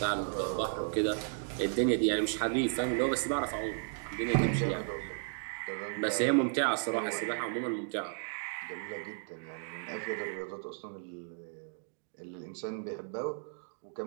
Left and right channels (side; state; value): left; silent; digital silence